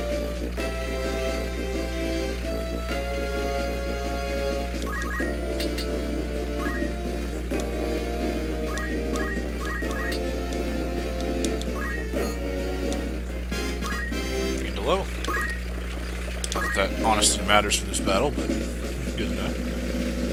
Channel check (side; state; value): both; identical; correlation 1.00